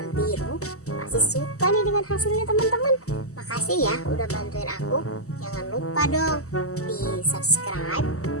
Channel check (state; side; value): late; right; 0.65 ms